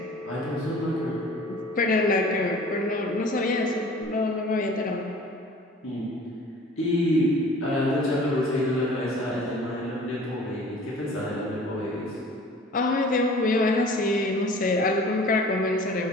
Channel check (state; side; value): normal; both; correlation 0.47